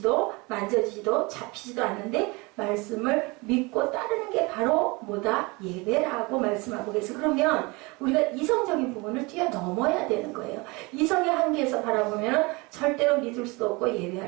만져지지도 잡히지도 않는데 말씀을 믿고 따르는 게 바로 뭐다? 예배라고 말씀하고 계세요. 그러면 우리가 이성적인 부분을 뛰어넘어야 되는 거예요. 이성의 한계에서 바라보면 절대로 믿을 수도 없고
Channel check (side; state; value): left; quieter; 26.0 dB